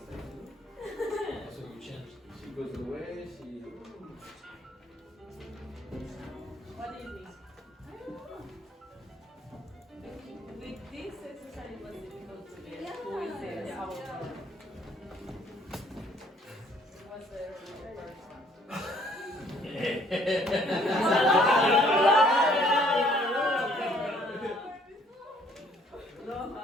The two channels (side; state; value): both; normal; correlation 0.61